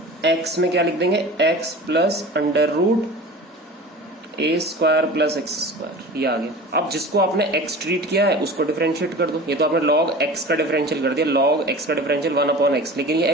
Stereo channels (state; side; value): normal; both; correlation 0.37